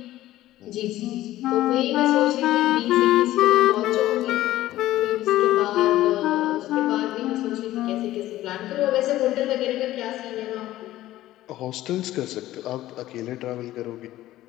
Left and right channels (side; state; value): right; quieter; 15.1 dB